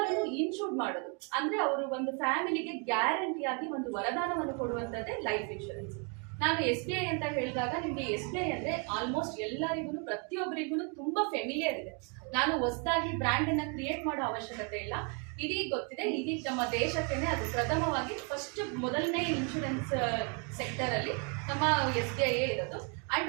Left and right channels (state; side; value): quieter; left; 35.9 dB